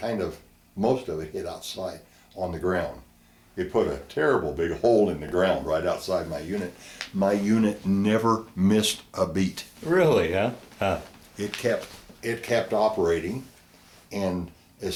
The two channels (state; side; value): identical; both; correlation 1.00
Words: of, most of it hit outside on the ground. It put a terrible big hole in the ground right outside my unit. My unit never missed a beat. Really, huh? Huh. It kept operating, and